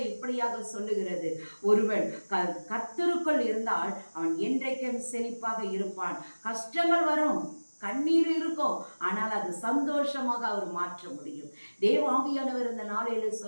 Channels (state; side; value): inverted; both; correlation -1.00